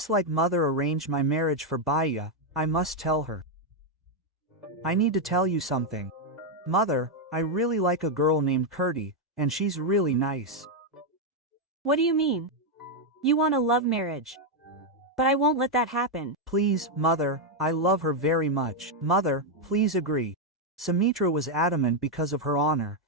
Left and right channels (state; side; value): normal; both; correlation 0.01